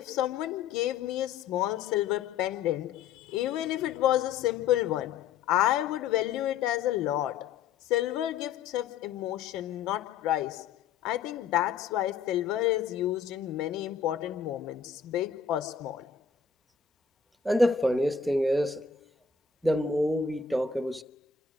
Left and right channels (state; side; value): quieter; right; 6.6 dB